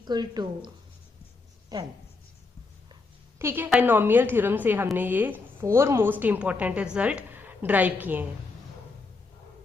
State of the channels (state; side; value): quieter; right; 3.9 dB